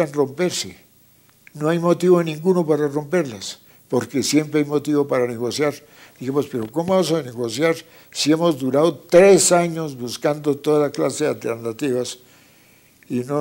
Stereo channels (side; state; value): both; identical; correlation 1.00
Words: romperse, no hay motivo ninguno para romperlas, porque siempre hay motivo para negociar. Dijimos, pero ¿cómo vamos a negociar si hemos durado 3 años buscando toda clase de alternativas y